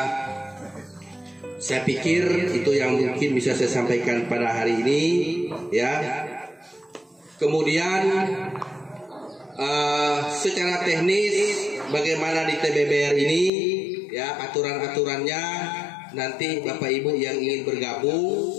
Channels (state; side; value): drops out; right; at 13.5 s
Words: saya pikir itu yang mungkin bisa saya sampaikan pada hari ini, ya. Kemudian secara teknis bagaimana di TBBR ini, ya, aturan-aturannya nanti Bapak Ibu yang ingin bergabung,